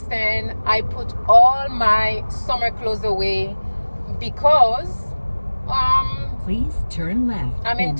I put all my summer clothes away because please turn left. I'm in and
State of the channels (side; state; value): both; inverted; correlation -1.00